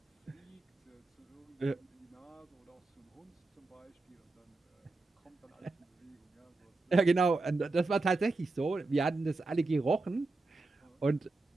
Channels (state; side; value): quieter; left; 3.4 dB